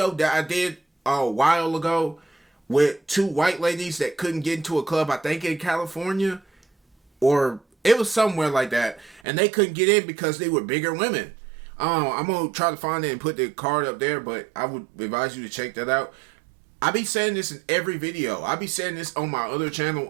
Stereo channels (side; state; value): left; drops out; at 9.2 s